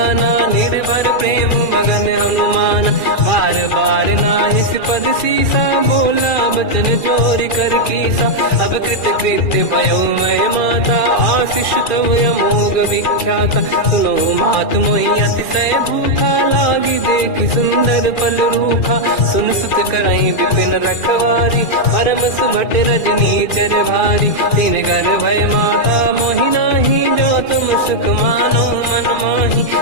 निर्भर प्रेम मगन हनुमान। बार बार नाहिस पद सीसा, बोला बचन जोरि कर कीसा। अब कृत कृत्य भयो मैं माता, आशीष तव अमोघ विख्याता। सुनो मात मोहि अतिशय भूखा, लागी देखि सुंदर फल रूखा। सुन सुत करहि विपिन रखवारी, परम सुभट रजनी चर भारी। तीन घर भय माता मोहि नाही, जो तुम सुख मानो मन माही।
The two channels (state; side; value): late; right; 2.4 ms